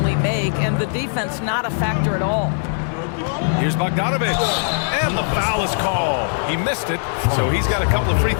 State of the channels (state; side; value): silent; right; digital silence